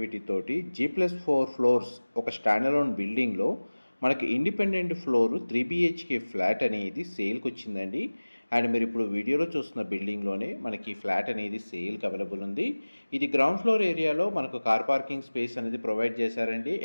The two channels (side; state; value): both; inverted; correlation -1.00